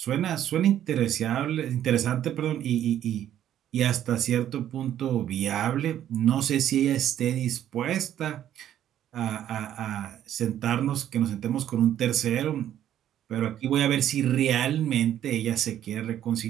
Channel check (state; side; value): quieter; left; 11.1 dB